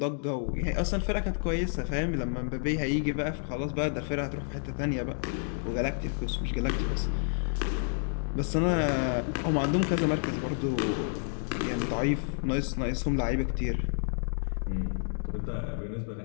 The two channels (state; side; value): silent; right; 58 dB below the other